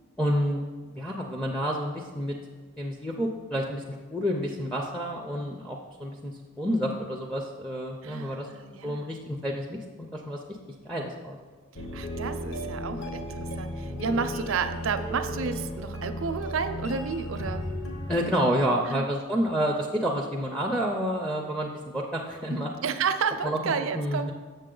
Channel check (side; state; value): both; normal; correlation 0.49